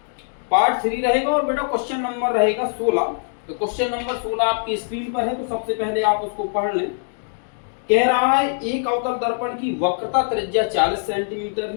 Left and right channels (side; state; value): right; silent; digital silence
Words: पार्ट 3 रहेगा और बेटा क्वेश्चन नंबर रहेगा 16। तो क्वेश्चन नंबर 16 आपकी स्क्रीन पर है, तो सबसे पहले आप उसको पढ़ लें। कह रहा है एक अवतल दर्पण की वक्रता त्रिज्या 40 सेंटीमीटर है,